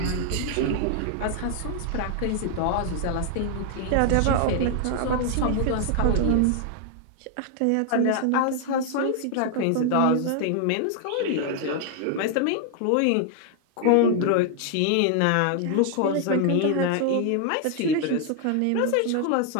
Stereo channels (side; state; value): both; different; correlation 0.00